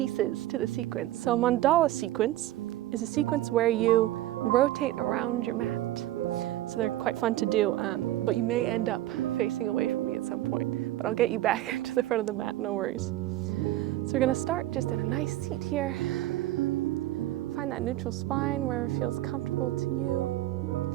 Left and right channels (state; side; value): quieter; left; 15.1 dB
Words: to the sequence. So mandala sequence is a sequence where you rotate around your mat. So they're quite fun to do, but you may end up facing away from me at some point, but I'll get you back to the front of the mat, no worries. So we're gonna start just in a nice seat here. Find that neutral spine where it feels comfortable to you.